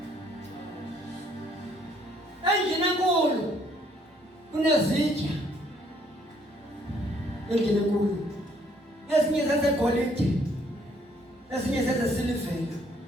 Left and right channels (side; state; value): both; normal; correlation 0.65